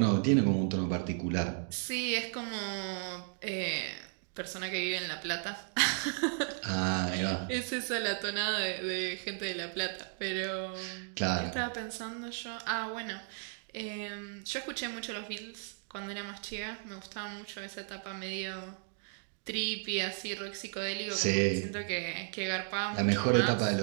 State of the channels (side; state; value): left; silent; 55 dB below the other